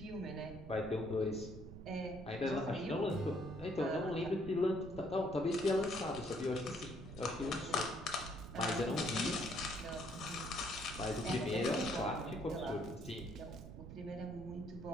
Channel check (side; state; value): right; noise; rumble, 12 dB below the sound